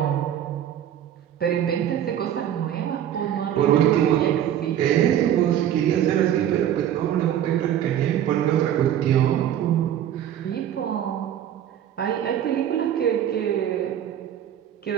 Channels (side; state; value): left; quieter; 10.7 dB